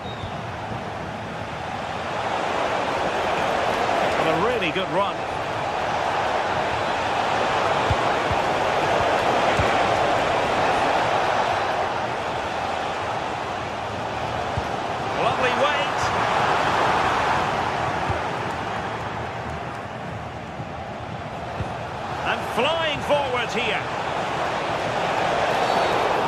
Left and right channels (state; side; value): identical; both; correlation 1.00